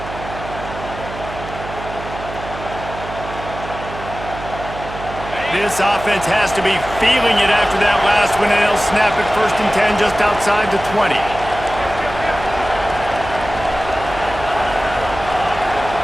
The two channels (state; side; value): noise; right; hum, 11 dB below the sound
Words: This offense has to be feeling it after that last one, and they'll snap it 1st and 10 just outside the 20.